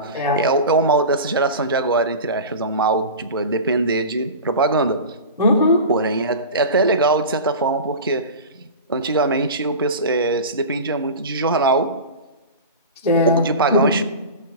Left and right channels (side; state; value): both; inverted; correlation -0.31